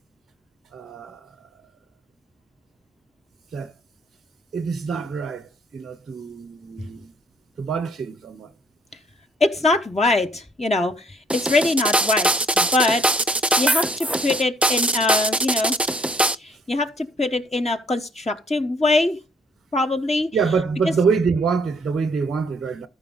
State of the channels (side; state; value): both; normal; correlation 0.63